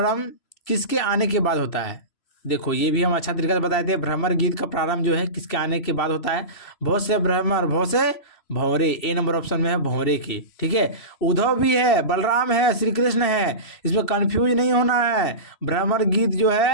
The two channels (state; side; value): late; right; 2.7 ms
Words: किसके आने के बाद होता है। देखो ये भी हम अच्छा तरीका से बताए थे। भ्रमर गीत का प्रारंभ जो है किसके आने के बाद होता है, बहुत से भ्रमर, बहुत से भंवरे, ए नंबर ऑप्शन में है भंवरे की। ठीक है, उद्धव भी है, बलराम है, श्री कृष्ण है, इसमें कंफ्यूज नहीं होना है। भ्रमर गीत जो